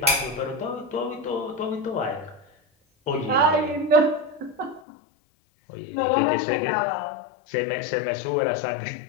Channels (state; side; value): drops out; right; at 4.8 s